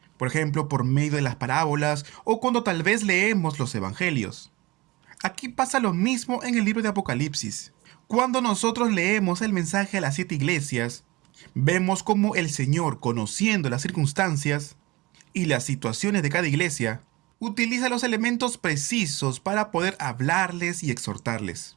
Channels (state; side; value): quieter; left; 21.8 dB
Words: Por ejemplo, por medio de las parábolas o cuando tal vez leemos los evangelios. Aquí pasa lo mismo en el libro de Apocalipsis. Cuando nosotros leemos el mensaje a las 7 iglesias, vemos cómo el Señor, conociendo las circunstancias y las situaciones de cada iglesia, utiliza los elementos precisos para poder hablarles y exhortarles.